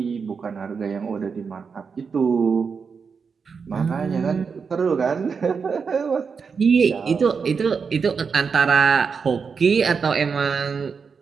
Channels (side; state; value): left; quieter; 5.7 dB